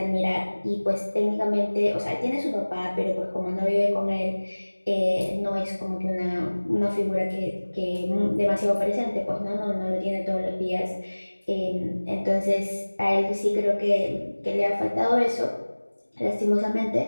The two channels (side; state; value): both; inverted; correlation -1.00